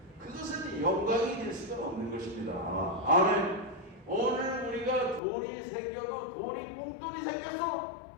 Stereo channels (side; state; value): right; drops out; at 5.2 s